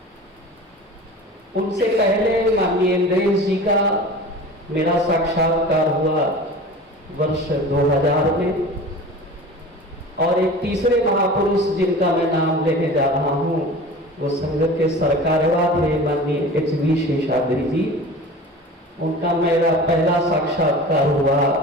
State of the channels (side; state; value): both; normal; correlation 0.38